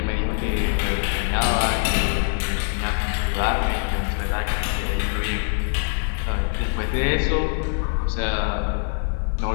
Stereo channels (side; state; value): right; silent; 60 dB below the other